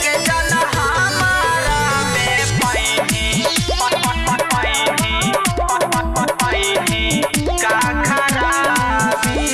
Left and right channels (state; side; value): identical; both; correlation 1.00